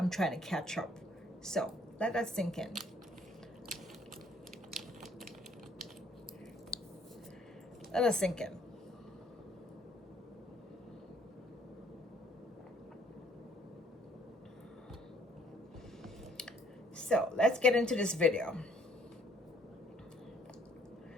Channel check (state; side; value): normal; both; correlation 0.62